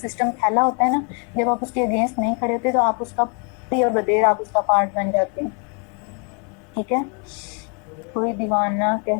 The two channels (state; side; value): quieter; right; 36.9 dB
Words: سسٹم پھیلا ہوتا ہے نا، جب آپ اس کے اگینسٹ نہیں کھڑے ہوتے تو آپ اس کا بدیر آپ اس کا پارٹ بن جاتے ہیں۔ ٹھیک ہے، کوئی دیوانہ